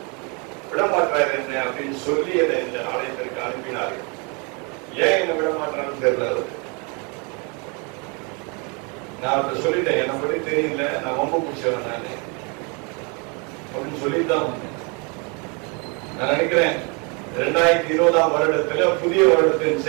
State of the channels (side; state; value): left; quieter; 32.9 dB